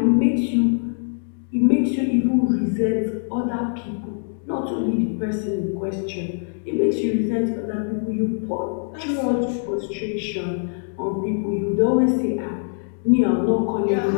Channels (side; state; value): right; silent; 64 dB below the other